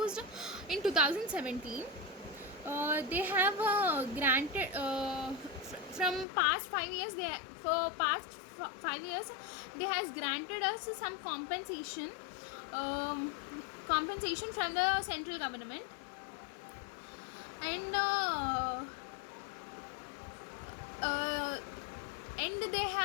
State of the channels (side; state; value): right; drops out; at 6.2 s